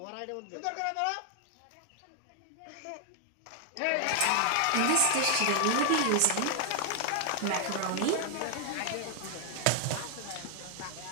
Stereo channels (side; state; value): both; different; correlation 0.00